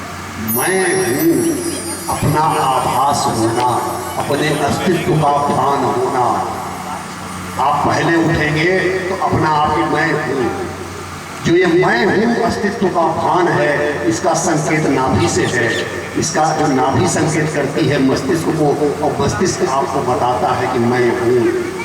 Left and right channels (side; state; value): both; identical; correlation 1.00